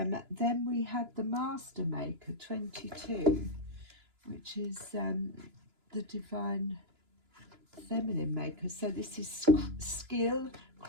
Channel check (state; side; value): late; left; 2.9 ms